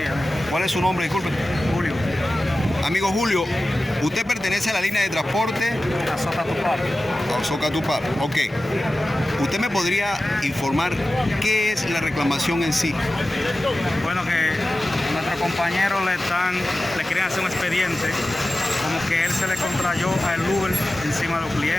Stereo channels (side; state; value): both; normal; correlation 0.95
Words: ¿Cuál es su nombre? Disculpe. Julio. Amigo Julio, usted pertenece a la línea de transporte A Socatupar. Socatupar. Ok. ¿Usted me podría informar qué es la reclamación en sí? Bueno, que nuestro compañero le quieren hacer un expediente, como que él se le contrayó al Uber encima de los